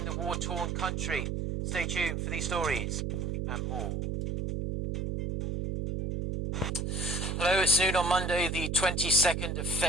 the war-torn country. Stay tuned for these stories and more. Hello, it's noon on Monday, the 22nd of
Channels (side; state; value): right; noise; hum, 1 dB below the sound